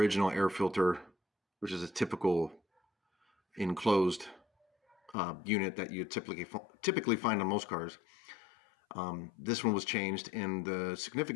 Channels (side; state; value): right; drops out; at 5.2 s